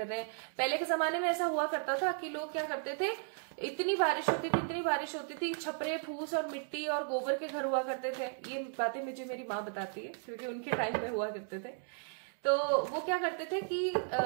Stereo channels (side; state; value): left; silent; 54 dB below the other